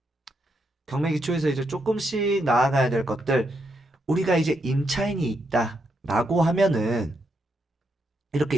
경매 기초에서 이제 조금씩 나아가야 될 것들 우리가 이제 임차인이 있다 라고 하면은 이렇게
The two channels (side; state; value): both; normal; correlation 0.80